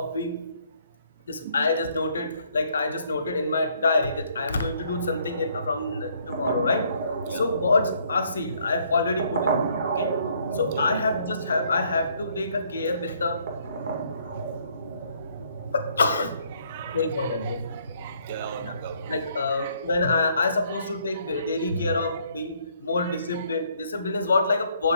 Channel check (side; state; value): both; inverted; correlation -0.67